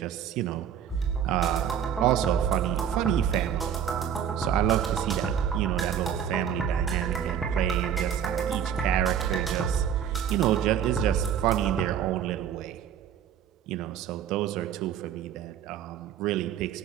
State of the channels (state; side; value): quieter; left; 8.8 dB